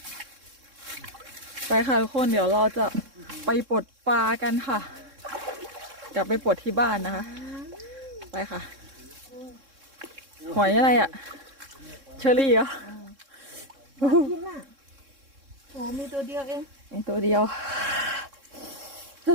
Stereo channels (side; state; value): left; late; 3.6 ms